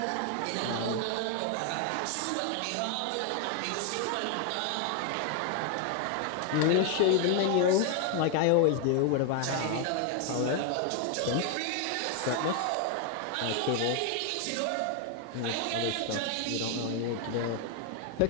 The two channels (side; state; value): both; different; correlation 0.01